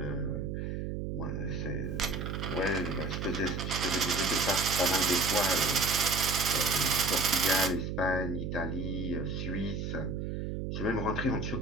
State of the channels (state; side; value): noise; right; hum, 3 dB below the sound